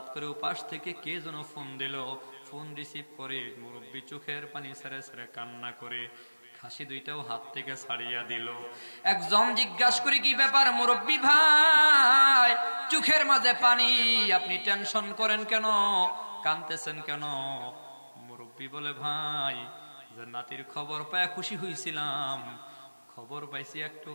করে উপাস থেকে কে যেন ফোন দিল। ফোন রিসিভ করে মুরব্বী চোখের পানি ছেড়ে ছেড়ে কান্না করে খাসি 2টাও হাত থেকে ছাড়িয়া দিল। একজন জিজ্ঞাসা করে, কি ব্যাপার মুরব্বী ভাই, চোখের মাঝে পানি, আপনি টেনশন করেন কেন, কাঁদতেছেন কেন? মুরব্বী বলে, ভাই যে নাতির খবর পায় খুশি হয়েছিলাম, খবর পাইছি একটু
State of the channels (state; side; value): inverted; both; correlation -1.00